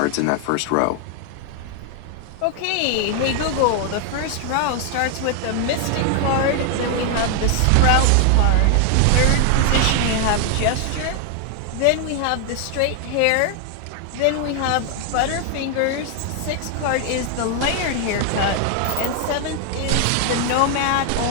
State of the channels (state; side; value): different; both; correlation 0.00